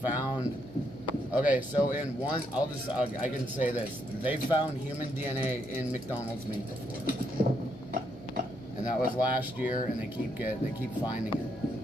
Okay, so in one, I can say this. They found human DNA in McDonald's meat before, and that was last year. And they keep finding it.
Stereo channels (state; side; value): normal; both; correlation 0.76